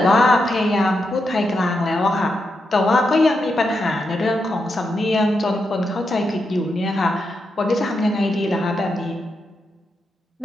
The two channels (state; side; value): normal; both; correlation 0.85